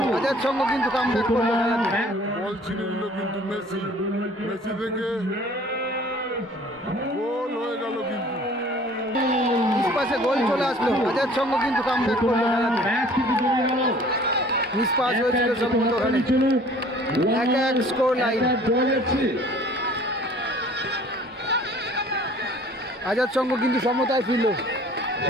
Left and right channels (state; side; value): normal; both; correlation 0.51